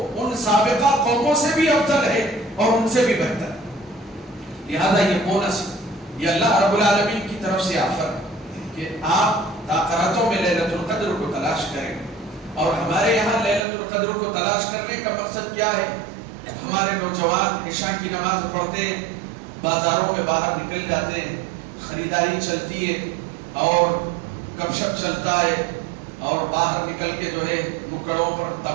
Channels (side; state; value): left; drops out; at 13.7 s